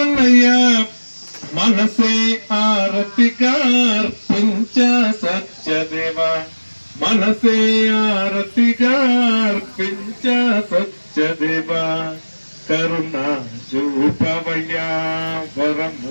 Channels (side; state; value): both; inverted; correlation -1.00